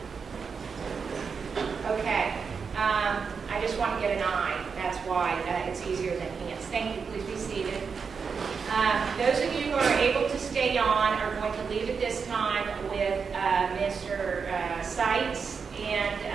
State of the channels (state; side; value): quieter; left; 5.7 dB